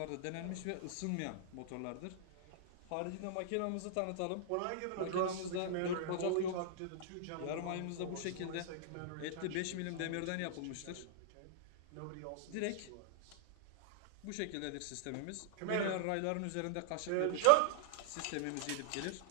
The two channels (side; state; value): both; different; correlation -0.01